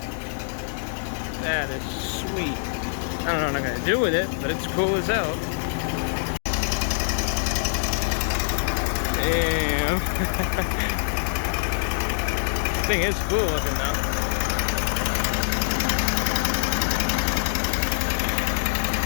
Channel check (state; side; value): silent; right; digital silence